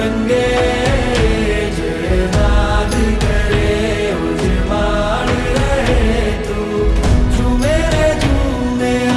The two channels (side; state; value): both; identical; correlation 1.00